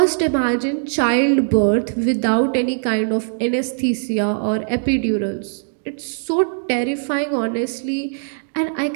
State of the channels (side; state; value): left; silent; digital silence